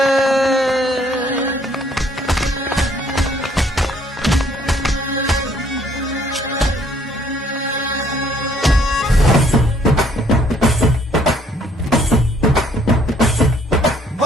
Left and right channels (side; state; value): both; normal; correlation 0.63